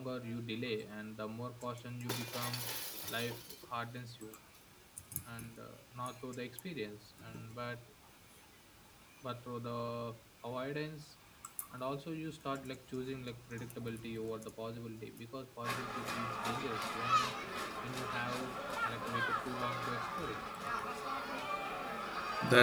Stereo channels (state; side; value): identical; both; correlation 1.00